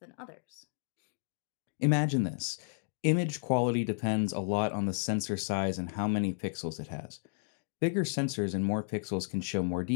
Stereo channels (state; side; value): silent; right; digital silence